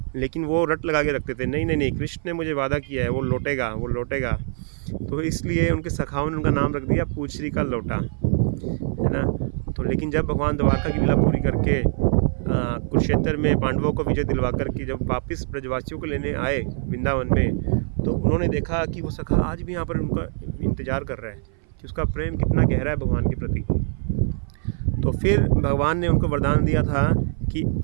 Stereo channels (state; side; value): silent; left; 57 dB below the other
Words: लेकिन वो रट लगा के रखते थे, नहीं नहीं नहीं, कृष्ण ने मुझे वादा किया है, वो लौटेगा, वो लौटेगा। तो इसलिए उनके सखाओं ने उनका नाम रख दिया पूछरी का लोटा, है ना। तो लेकिन जब भगवान द्वारका की लीला पूरी करके कुरुक्षेत्र में पांडवों को विजय दिलवा करके जब वापस ब्रजवासियों को लेने आए वृंदावन में, तो उन्होंने देखा कि वो सखा आज भी यहाँ पर उनका इंतज़ार कर रहा है कि उसका प्रेम कितना गहरा है भगवान के प्रति। तो फिर भगवान ने उनको वरदान दिया था कि